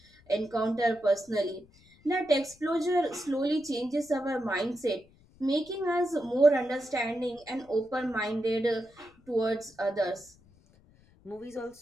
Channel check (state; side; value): noise; left; rumble, 28 dB below the sound